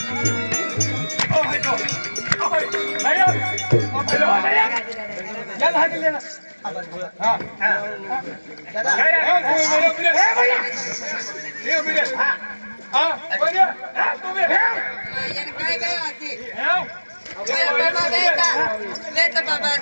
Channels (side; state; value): both; inverted; correlation -1.00